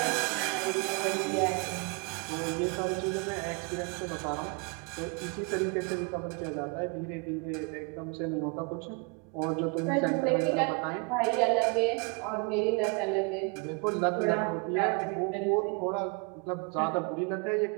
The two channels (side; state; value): left; quieter; 33.2 dB